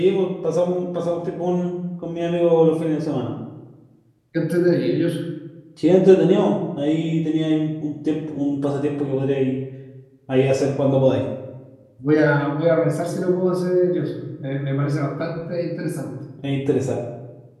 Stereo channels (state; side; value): identical; both; correlation 1.00